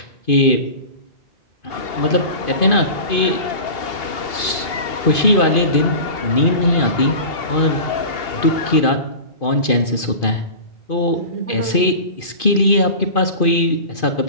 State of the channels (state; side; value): late; right; 2.5 ms